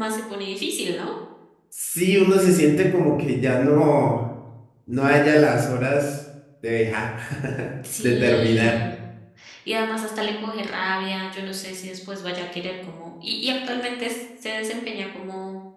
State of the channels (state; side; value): identical; both; correlation 1.00